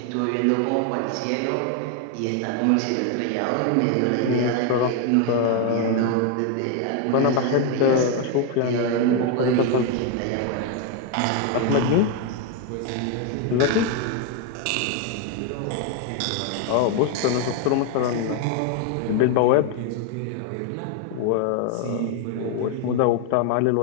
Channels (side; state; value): both; different; correlation 0.01